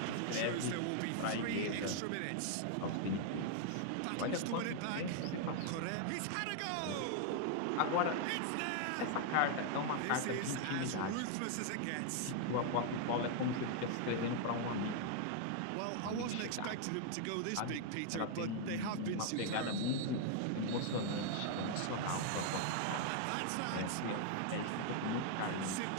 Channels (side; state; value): both; different; correlation 0.00